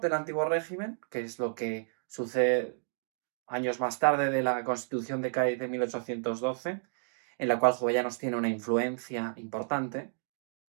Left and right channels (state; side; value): silent; left; digital silence